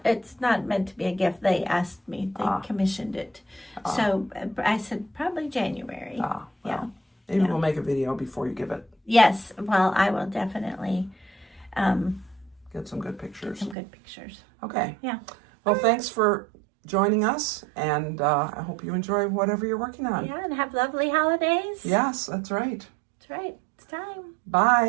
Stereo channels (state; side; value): drops out; left; at 13.8 s